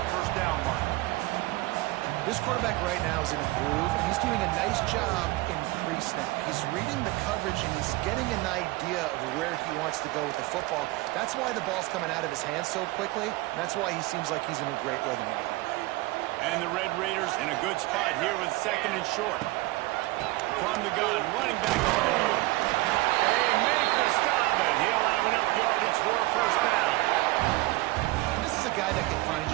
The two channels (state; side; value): quieter; left; 20.4 dB